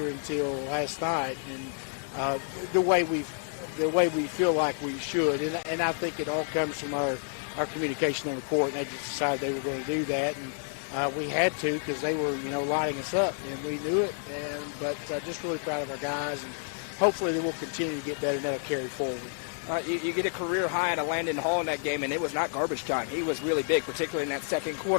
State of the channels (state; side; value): silent; right; 58 dB below the other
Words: until last night, and the way we feel like we should, and I think it all comes from our communication on the court, and they just decided they were going to do that, and we had to because they were lighting us up, and we knew it, but just really proud of our guys, and hopefully they will continue to get better, and that'll carry forward. You get a career high out of Landon Hall in that game, and it was not garbage time. He was really big, particularly in that second